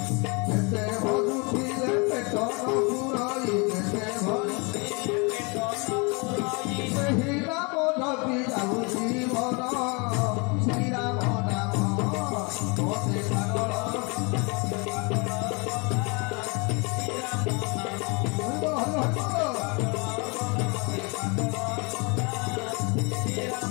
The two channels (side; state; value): right; quieter; 30.8 dB